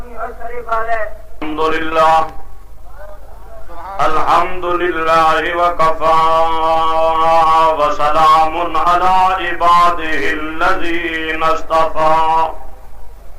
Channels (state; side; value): identical; both; correlation 1.00